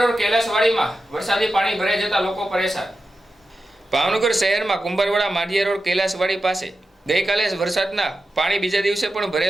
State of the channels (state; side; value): normal; both; correlation 0.91